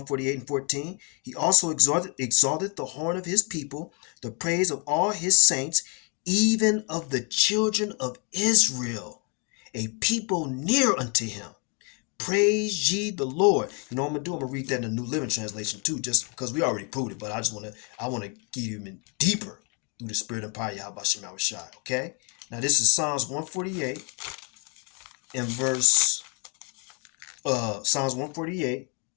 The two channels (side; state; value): right; quieter; 35.3 dB